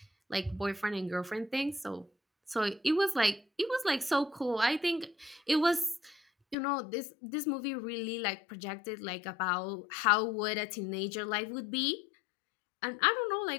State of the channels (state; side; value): drops out; right; at 6.6 s